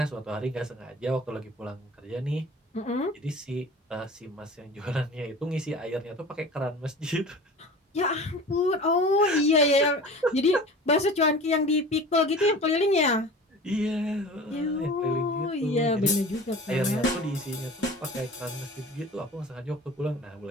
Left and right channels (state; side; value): normal; both; correlation 0.39